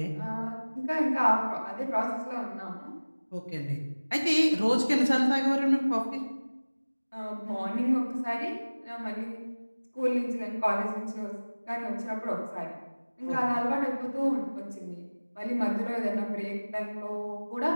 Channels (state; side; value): inverted; both; correlation -1.00